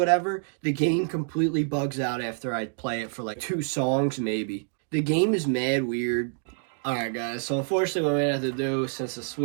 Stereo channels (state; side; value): silent; left; digital silence